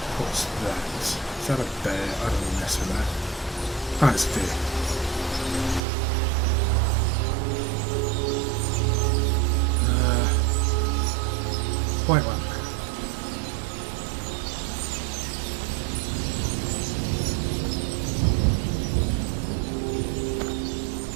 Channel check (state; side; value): drops out; left; at 5.8 s